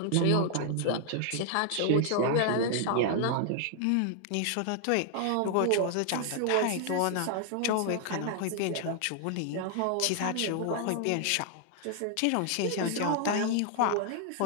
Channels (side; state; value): both; different; correlation 0.00